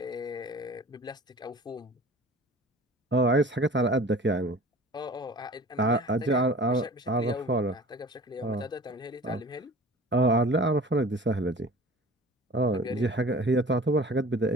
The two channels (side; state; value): both; normal; correlation 0.42